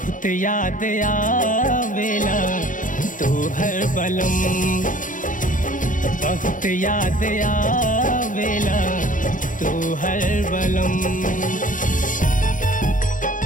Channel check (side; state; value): right; late; 0.38 ms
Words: याद आवेला तोहर बलम, बहुत याद आवेला तोहर बलम।